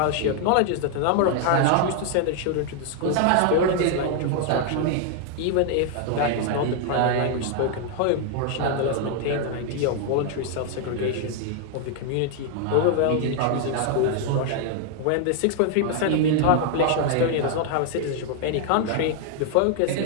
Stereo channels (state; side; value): different; both; correlation 0.00